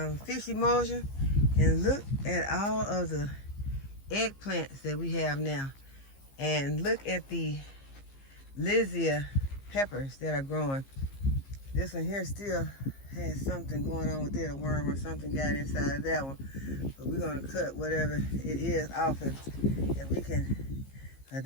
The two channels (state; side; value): late; right; 15 ms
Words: fish emulsion. And look at all of the eggplants that we have now. And look at the lizia peppers that are growing. This one here still has something going on with it, a worm or something got inside of that one. But we're gonna cut whatever it is off it, and we can,